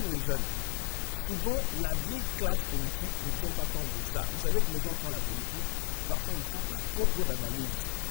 jeune. Souvent, la vieille classe politique ne tient pas compte de ça. Vous savez que les gens font la politique, parfois, ne font pas trop d'analyse.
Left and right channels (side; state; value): right; silent; digital silence